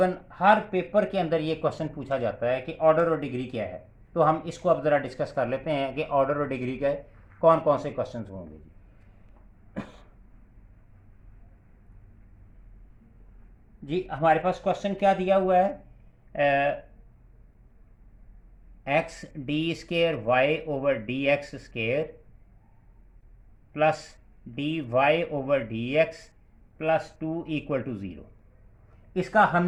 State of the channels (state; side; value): identical; both; correlation 1.00